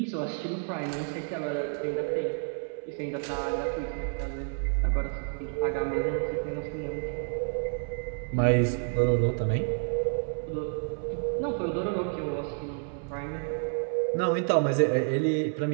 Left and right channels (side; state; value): left; silent; 58 dB below the other